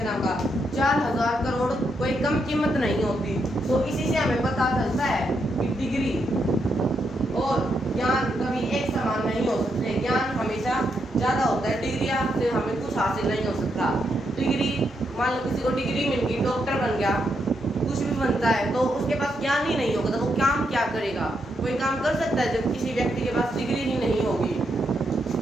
नाम का। 4,000 करोड़ कोई कम कीमत नहीं होती। तो इसी से हमें पता चलता है कि डिग्री और ज्ञान कभी एक समान नहीं हो सकते। ज्ञान हमेशा ज़्यादा होता है, डिग्री से हमें कुछ हासिल नहीं हो सकता। डिग्री मान लो किसी को डिग्री मिल गई, डॉक्टर बन गया, कुछ भी बनता है, तो उसके पास ज्ञान ही नहीं होगा तो वो काम क्या करेगा? कोई काम कर सकता है जब किसी व्यक्ति के पास डिग्री ही नहीं होगी?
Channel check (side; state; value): both; normal; correlation 0.80